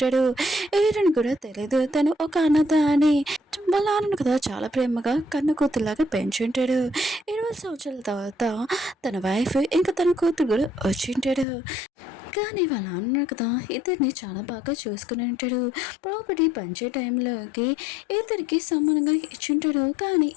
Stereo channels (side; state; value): right; drops out; at 11.5 s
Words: హీరోని కూడా తెలియదు తను ఒక అనాథ అని. వాళ్ళ నాన్నను కదా చాలా ప్రేమగా కన్న కూతురులాగా పెంచుంటాడు. 20 సంవత్సరాల తర్వాత తన వైఫ్ ఇంకా తన కూతురు కూడా వచ్చింటాడు. కానీ వాళ్ళ నాన్న కదా ఇద్దరిని చాలా బాగా చూసుకుని ఉంటాడు. ప్రాపర్టీ పంచే టైంలోకి ఇద్దరికి సమానంగా ఇచ్చింటాడు. కానీ